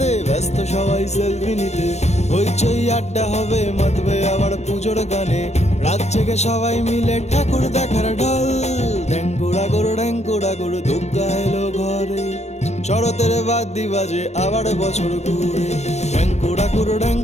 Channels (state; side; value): late; right; 0.32 ms